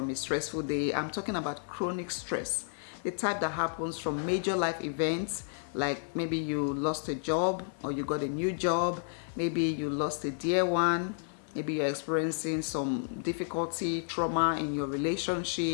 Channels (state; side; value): silent; right; 57 dB below the other